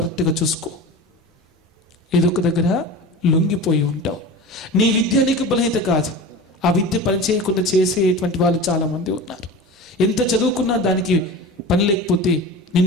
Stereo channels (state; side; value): normal; both; correlation 0.32